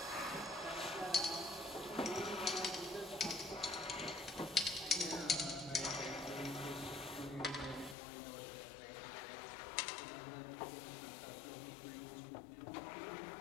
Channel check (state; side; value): drops out; right; at 8.0 s